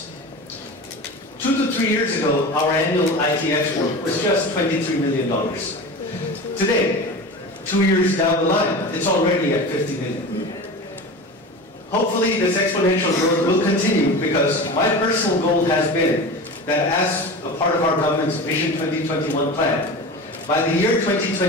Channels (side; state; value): both; normal; correlation 0.31